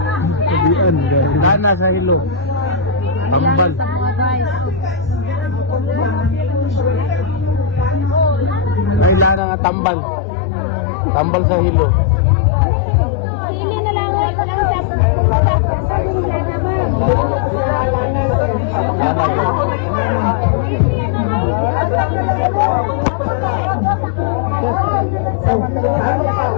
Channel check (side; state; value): right; drops out; at 9.4 s